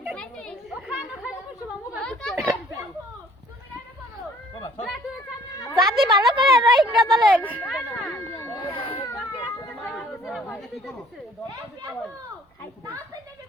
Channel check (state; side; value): normal; both; correlation 0.57